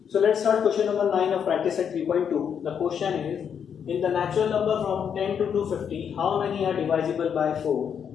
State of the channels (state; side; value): quieter; right; 7.7 dB